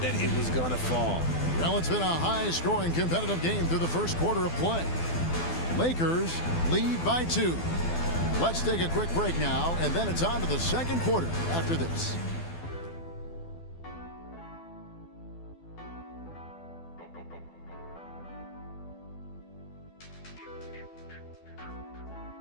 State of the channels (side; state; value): right; late; 12 ms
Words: that it was going to fall. Well, it's been a high-scoring competitive game through the first quarter of play. Lakers lead by 2. Let's take a quick break now, and then it's on to the second quarter after this.